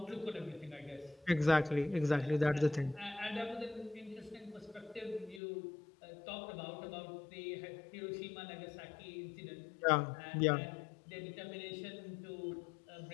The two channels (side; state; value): right; drops out; at 5.4 s